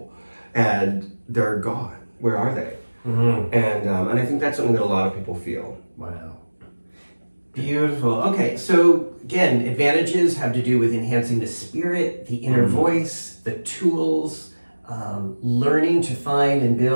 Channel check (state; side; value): inverted; both; correlation -1.00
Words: and they're gone. Where are they? Mm-hmm. And I think that's something that a lot of people feel. Wow. Beautiful. Okay, so again, advantages have to do with enhancing the spirit, the inner voice, the tools, learning to find and